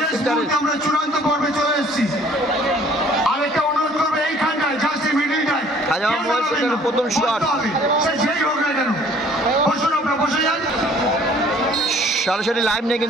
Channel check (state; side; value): normal; both; correlation 0.56